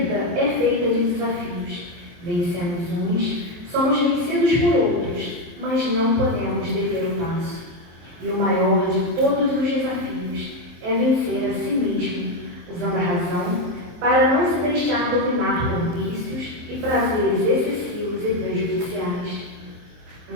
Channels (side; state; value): left; late; 23 ms